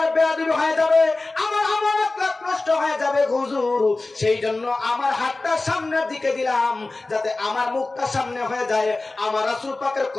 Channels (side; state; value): right; quieter; 3.2 dB